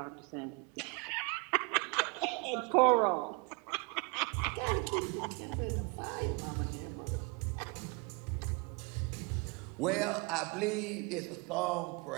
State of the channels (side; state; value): left; quieter; 30.6 dB